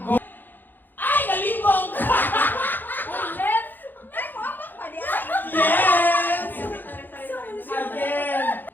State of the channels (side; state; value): right; late; 0.090 ms